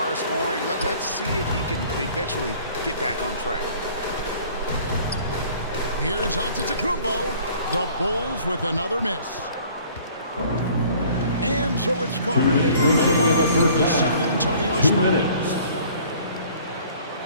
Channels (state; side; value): inverted; both; correlation -0.53